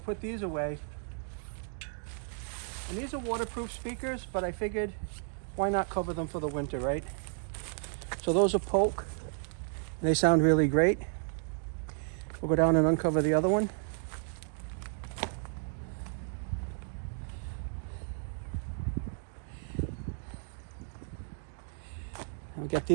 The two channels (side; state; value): left; silent; 56 dB below the other